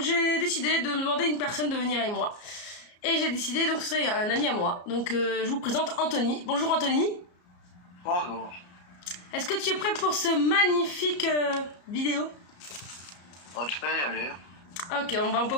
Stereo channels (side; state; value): right; late; 34 ms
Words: j'ai décidé de demander à une personne de venir avec moi. Et j'ai décidé, donc ce serait un ami à moi. Donc je vous présente Anthony. Bonjour Anthony. Bonjour. Est-ce que tu es prêt pour ce magnifique vidéo? Oh, tu peux y aller. Ok, on